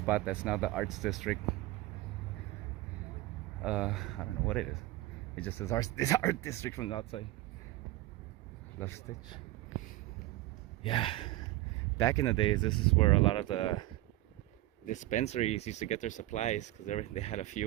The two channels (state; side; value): quieter; left; 17.1 dB